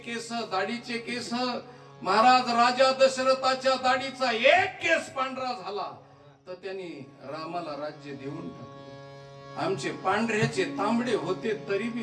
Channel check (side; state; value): both; identical; correlation 1.00